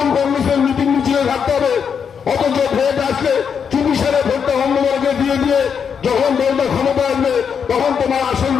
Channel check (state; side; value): quieter; right; 7.0 dB